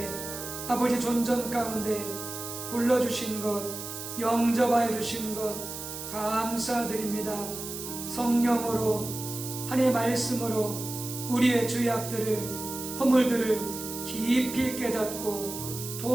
아버지 존전 가운데 불러주신 것, 영접하여 주신 것 감사드립니다. 성령으로 하나님의 말씀으로 우리의 죄악들을 허물들을 깊이 깨닫고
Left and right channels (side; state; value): right; noise; hiss, 8 dB below the sound